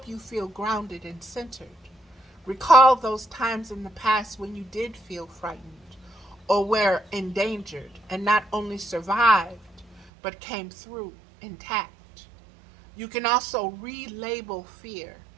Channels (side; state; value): left; drops out; at 10.1 s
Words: you feel grounded and centered. Recall those times in the past when you did feel frightened or were endangered and not only survived, but came through intact. You can also relabel fear